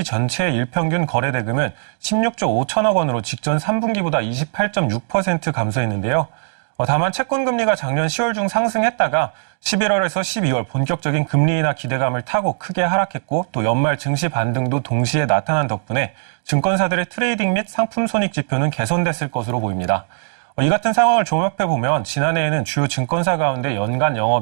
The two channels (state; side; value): silent; left; digital silence